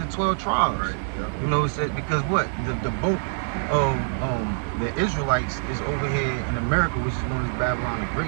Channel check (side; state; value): left; silent; digital silence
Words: 12 tribes. Right. Yep. You know, it said because what the boat of the Israelites is over here in America, which is known as Babylon the